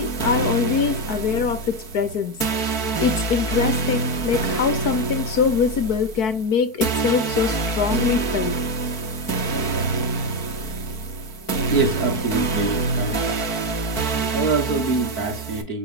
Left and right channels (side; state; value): right; late; 4.6 ms